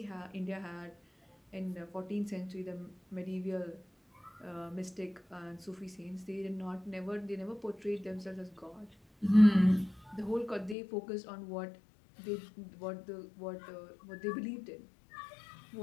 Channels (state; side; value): drops out; right; at 10.8 s